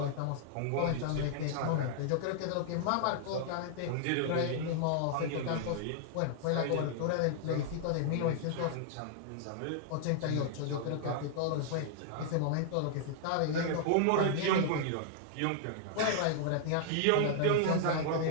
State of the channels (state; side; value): different; both; correlation -0.01